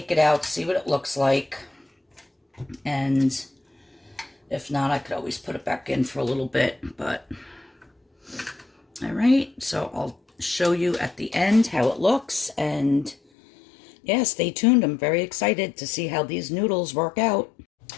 it out, see what it looks like. And if not, I could always put it back in for a little bit, but all right, so I'll show you at the end how it looks, and yeah, stay tuned. I'm very excited to see how these noodles work out.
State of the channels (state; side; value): drops out; right; at 13.2 s